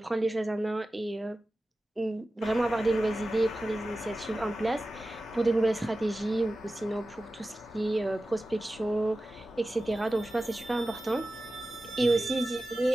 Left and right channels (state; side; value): normal; both; correlation 0.95